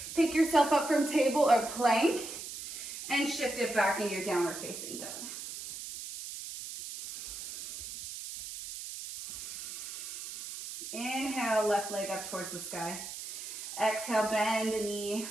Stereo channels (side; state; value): right; noise; hiss, 9 dB below the sound